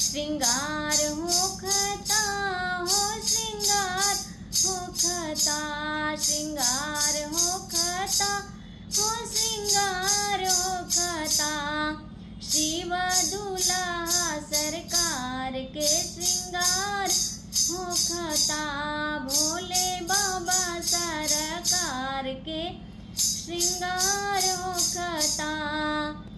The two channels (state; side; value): identical; both; correlation 1.00